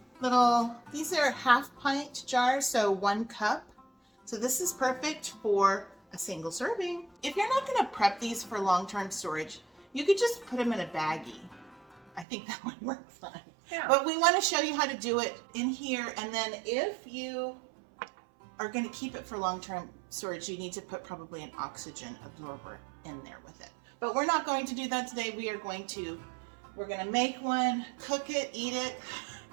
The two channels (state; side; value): drops out; left; at 12.2 s